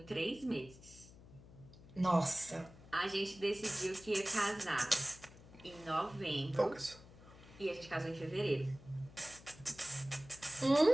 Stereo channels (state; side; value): noise; left; hum, 20 dB below the sound